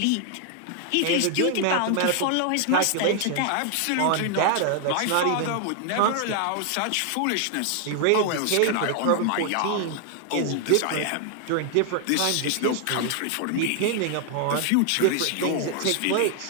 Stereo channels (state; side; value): different; both; correlation 0.00